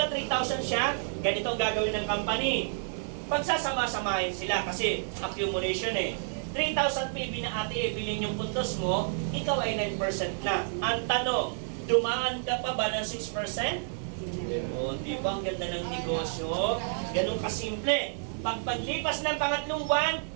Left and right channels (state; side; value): silent; left; digital silence